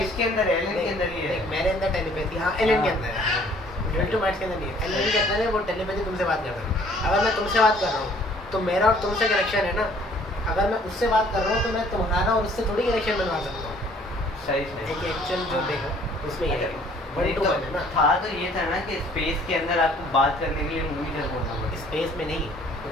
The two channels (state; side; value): normal; both; correlation 0.57